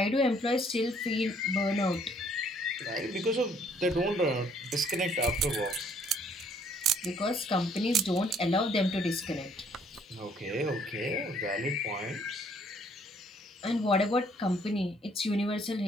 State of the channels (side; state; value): both; normal; correlation 0.63